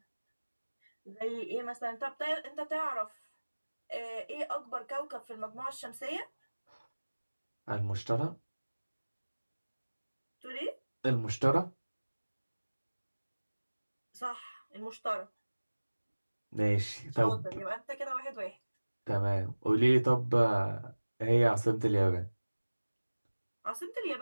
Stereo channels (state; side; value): inverted; both; correlation -1.00